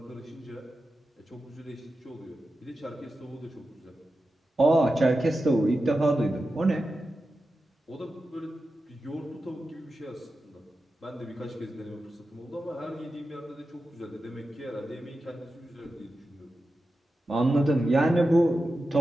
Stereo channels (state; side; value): normal; both; correlation 0.91